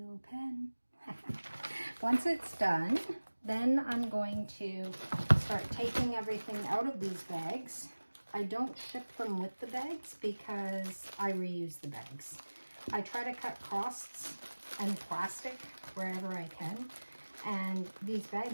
pen. Once it's done, then I'm going to start taking everything out of these bags. I don't ship them with the bags because I reuse the bags. I try to cut costs and plastic wherever I can, and these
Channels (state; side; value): inverted; both; correlation -1.00